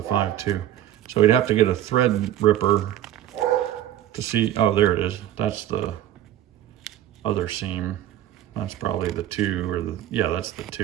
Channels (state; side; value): quieter; left; 12.4 dB